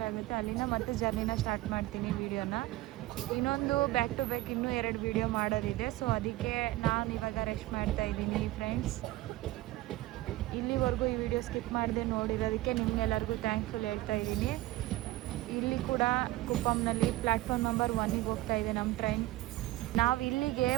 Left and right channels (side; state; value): left; quieter; 17.5 dB